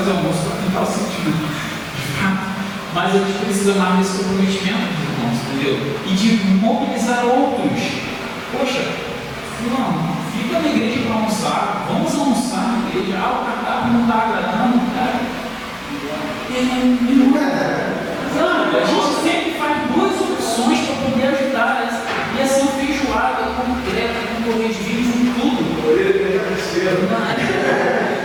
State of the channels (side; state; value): both; identical; correlation 1.00